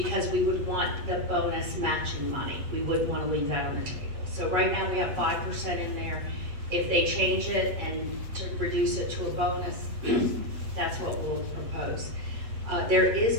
we would want the bonus matching money. We wouldn't want to leave that on the table. So right now we have 5% in there. If they change it and to reduce it to a bonus, that's what we'll propose. There is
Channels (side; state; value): left; late; 8.0 ms